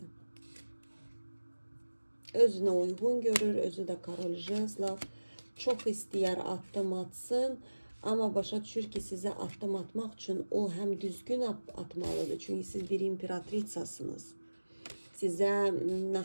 Özünə uyğun görür, özü də Karol Jezlov. Çox istəyər addım atsın, amma başa düşür ki, sizə addım atmaq üçün o həm düzgün atmalıdır. Çünki siz bir imperatritsasınız. Sizə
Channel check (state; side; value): inverted; both; correlation -1.00